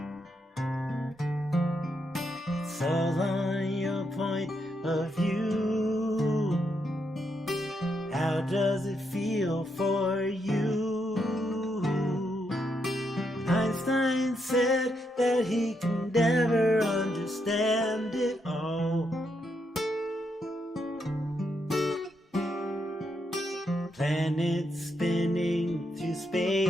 It's all on your point of view. How does it feel for you? Einstein said that he can never understand it all. Planets spinning through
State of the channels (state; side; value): normal; both; correlation 0.80